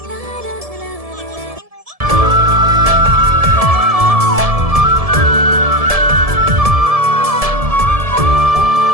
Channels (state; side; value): late; left; 1.7 ms